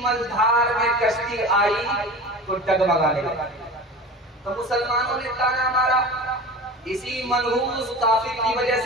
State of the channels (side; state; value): both; normal; correlation 0.34